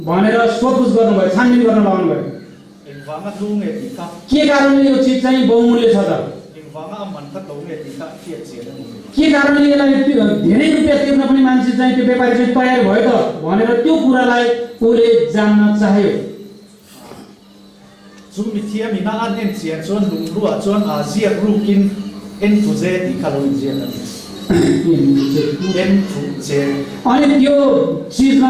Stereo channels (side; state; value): both; identical; correlation 1.00